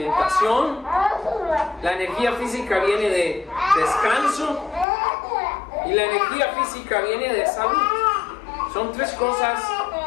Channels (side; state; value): right; drops out; at 4.9 s